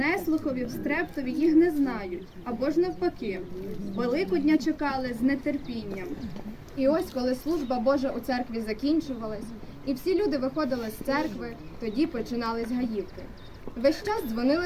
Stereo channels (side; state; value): both; identical; correlation 1.00